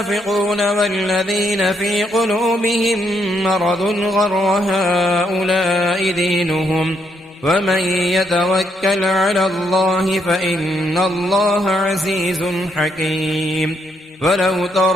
والذين في قلوبهم مرض غر هؤلاء دينهم ومن يتوكل على الله فإن الله عزيز حكيم. ولو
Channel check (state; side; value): normal; both; correlation 0.75